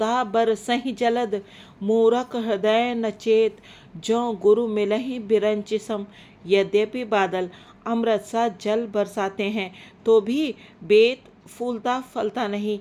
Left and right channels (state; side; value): identical; both; correlation 1.00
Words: बरसहि जलद, मूरख हृदय न चेत, ज्यों गुरु मिलहि बिरंचि सम। यद्यपि बादल अमृत सा जल बरसाते हैं तो भी बेत फूलता फलता नहीं,